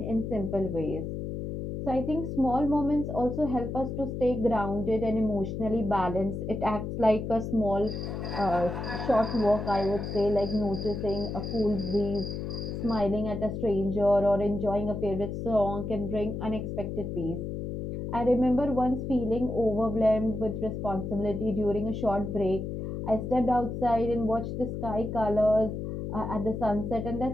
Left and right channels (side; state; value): left; noise; hum, 5 dB below the sound